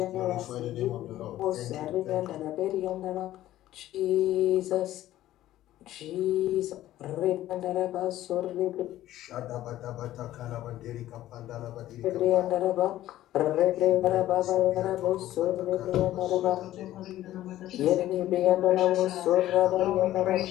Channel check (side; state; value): right; quieter; 14.0 dB